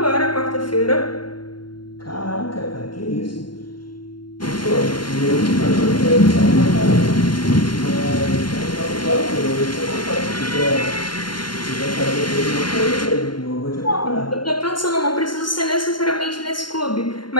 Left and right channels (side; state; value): right; late; 0.72 ms